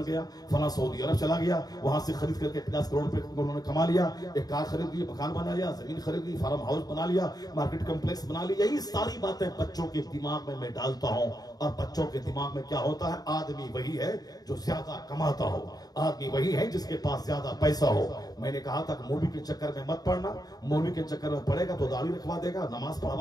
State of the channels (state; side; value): late; right; 0.19 ms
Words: गया, फला सऊदी अरब चला गया, वहां से खरीद करके 50 करोड़ रुपए उन्होंने कमा लिया, एक कार खरीद ली, मकान बना लिया, जमीन खरीद ली, फार्म हाउस बना लिया, मार्केट कॉम्प्लेक्स बना लिया। यही सारी बातें बच्चों के दिमाग में मैं डालता हूं, और बच्चों के दिमाग में क्या होता है? आदमी वही है जो ज्यादा कमाता हो, आदमी वही है जिसके पास ज्यादा पैसा हो। मैंने कहा था कि मौलवी के चक्कर में मत पड़ना, मौलवी के चक्कर में पड़ेगा तो दाढ़ी रखवा देगा, नमाज